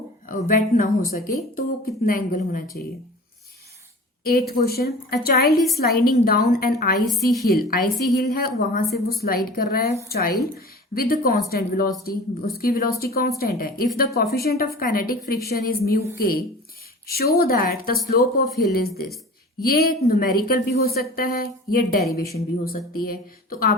वेट ना हो सके, तो वो कितना एंगल होना चाहिए। 8th question, a child is sliding down an icy hill है, वहां से वो स्लाइड कर रहा है चाइल्ड विद कांस्टेंट वेलोसिटी, उसकी वेलोसिटी कांस्टेंट है। If the coefficient of kinetic friction is mu k, show that the slope of hill is this. ये न्यूमेरिकल भी हो सकता है, ये डेरिवेशन भी हो सकती है, तो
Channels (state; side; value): normal; both; correlation 0.39